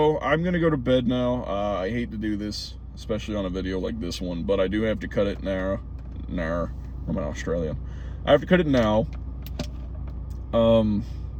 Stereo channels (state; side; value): identical; both; correlation 1.00